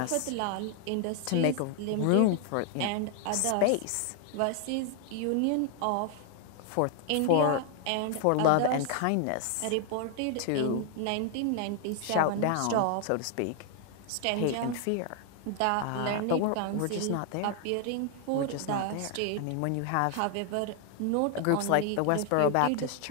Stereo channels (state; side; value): different; both; correlation 0.00